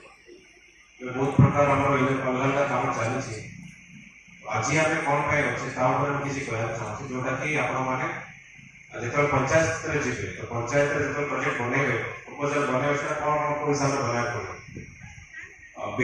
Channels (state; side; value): identical; both; correlation 1.00